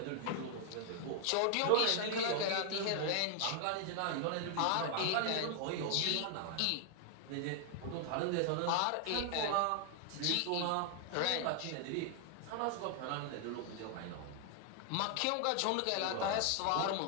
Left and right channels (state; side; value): different; both; correlation 0.00